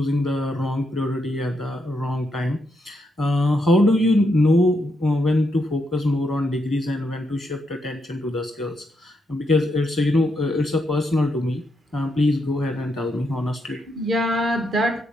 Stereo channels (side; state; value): both; normal; correlation 0.80